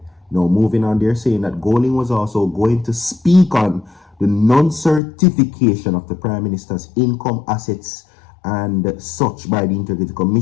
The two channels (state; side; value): drops out; right; at 5.0 s